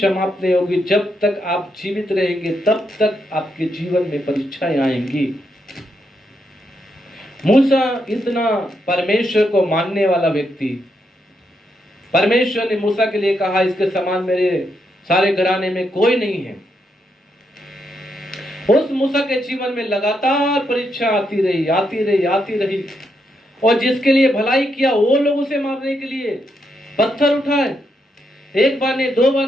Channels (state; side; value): normal; both; correlation 0.80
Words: नहीं होगी। जब तक आप जीवित रहेंगे तब तक आपके जीवन में परीक्षाएं आएंगी। मूसा इतना परमेश्वर को मानने वाला व्यक्ति, परमेश्वर ने मूसा के लिए कहा इसके समान मेरे सारे घराने में कोई नहीं है। उस मूसा के जीवन में लगातार परीक्षा आती रही, आती रही, आती रही, और जिसके लिए भलाई किया वो लोग उसे मारने के लिए पत्थर उठाए। एक बार नहीं, दो